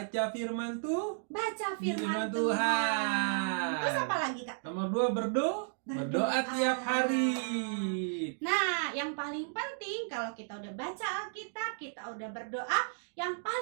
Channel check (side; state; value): left; silent; digital silence